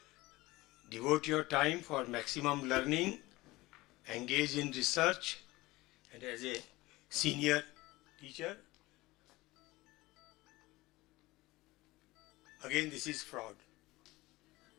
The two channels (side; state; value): right; quieter; 20.0 dB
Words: Devote your time for maximum learning, engage in research, and as a senior teacher, again this is fraud.